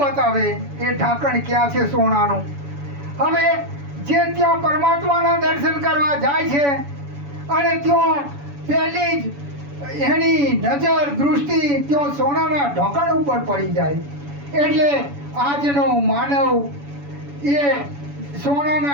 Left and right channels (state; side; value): late; left; 7.0 ms